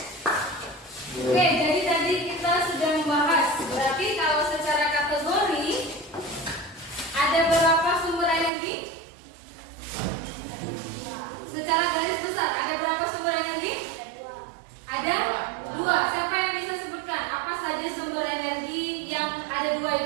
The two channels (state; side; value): drops out; left; at 8.5 s